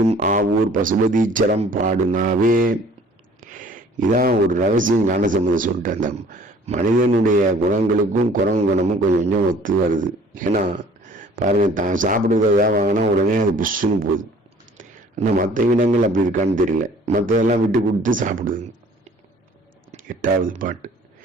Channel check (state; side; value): normal; both; correlation 0.53